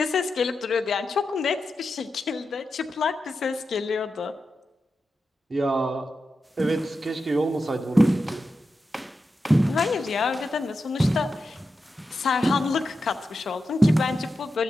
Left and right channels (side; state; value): both; normal; correlation 0.89